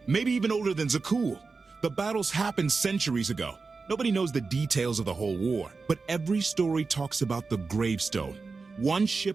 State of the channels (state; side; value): quieter; left; 4.4 dB